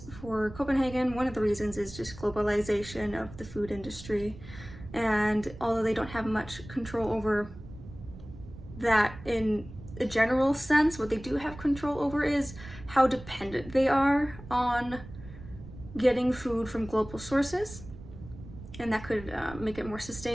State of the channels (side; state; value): right; noise; rumble, 15 dB below the sound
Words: for Copenhagen, one of the reasons is just globalization of the food industry. And although they don't have much control over that in a general sense, what they do have control over is how dependent they are on getting food from global sources, and that could make it more